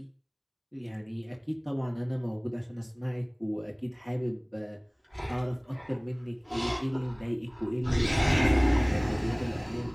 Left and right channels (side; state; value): both; identical; correlation 1.00